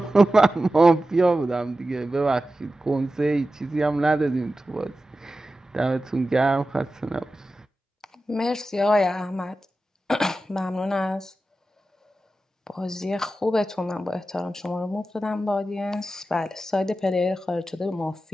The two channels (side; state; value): both; normal; correlation 0.93